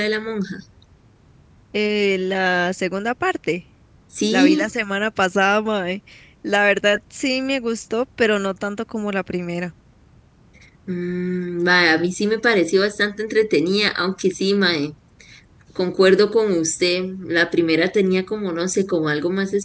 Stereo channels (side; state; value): both; identical; correlation 1.00